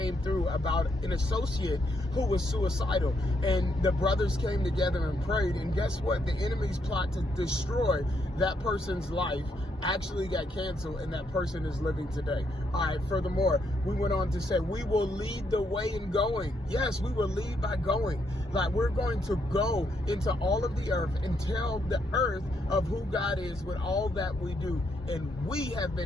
through about an associate who was suicidal. And the brothers came together and prayed. And guess what? The enemy's plot to destroy that person's life actually got canceled, and that person is living today. All right, furthermore, we went on to say, we will lead the way in going. Yes, we will lead by going. Like, we're going to go into all of the earth and tell the earth of who God is with all that we do. And we have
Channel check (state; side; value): normal; both; correlation 0.76